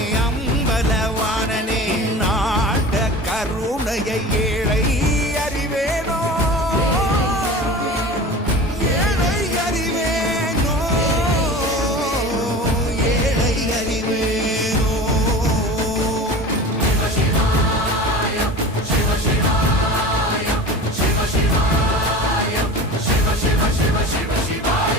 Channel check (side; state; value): both; normal; correlation 0.35